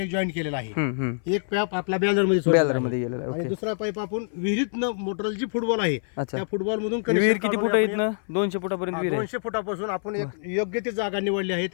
जॉईंट केलेलं आहे. एक पाईप आपल्या बॅलरमध्ये गेलेला आहे. आणि ओके. दुसरा पाईप आपण विहिरीतनं मोटरल जी फुटबॉल आहे अच्छा. त्या फुटबॉल मधून विहीर किती फूट आहे इथनं? 200 फुटापर्यंत विहीर आहे. 200 फुटापासून आपण एक योग्य ती जागा निवडली आहे.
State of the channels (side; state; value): right; silent; 56 dB below the other